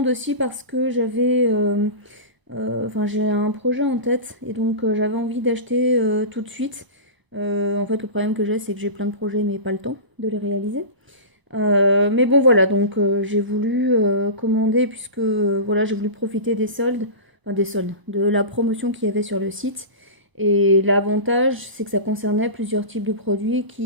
aussi parce que enfin j'ai un projet en tête et donc j'avais envie d'acheter tout de suite. En fait, le problème que j'ai, c'est que j'ai plein de projets mais pas le temps de les réaliser. Mais bon voilà, donc j'ai voulu commander puisque voilà, j'ai voulu profiter des soldes, enfin des soldes, de la promotion qu'il y avait sur le site. Et l'avantage, c'est que ça concernait plusieurs types de produits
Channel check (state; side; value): late; left; 1.0 ms